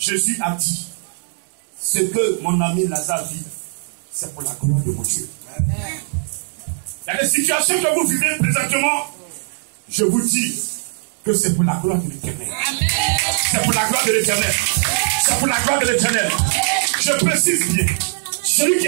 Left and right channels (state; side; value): silent; left; digital silence